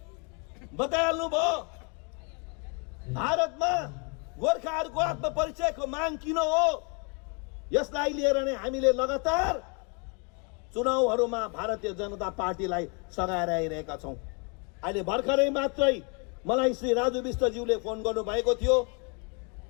बताइहाल्नु भयो, भारतमा गोर्खाहरूको आत्मपरिचयको माग किन हो। यसलाई लिएर नै हामीले लगातार चुनावहरूमा भारतीय जनता पार्टीलाई सघाएर आइरहेका छौँ। अहिले भर्खरै मात्रै मलाई श्री राजु विष्टज्यूले फोन गर्नुभएको थियो,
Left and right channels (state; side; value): quieter; right; 35.1 dB